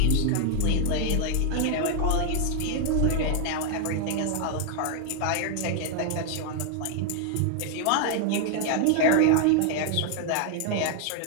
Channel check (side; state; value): both; different; correlation 0.00